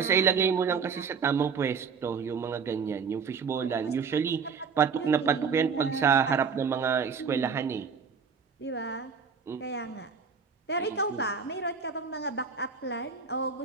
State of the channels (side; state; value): left; quieter; 5.8 dB